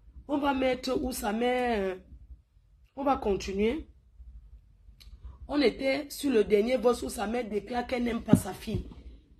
On va mettre où sa mère. On va continuer. On était sur le dernier vote où sa mère déclare qu'elle n'aime pas sa fille.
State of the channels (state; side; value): identical; both; correlation 1.00